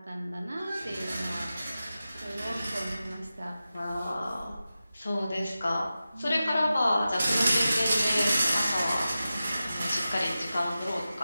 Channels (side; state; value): both; inverted; correlation -0.93